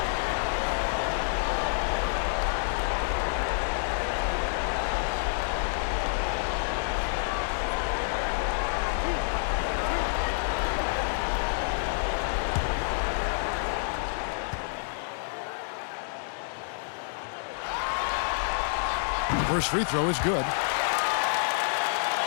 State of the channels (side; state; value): right; silent; 59 dB below the other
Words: First free throw is good.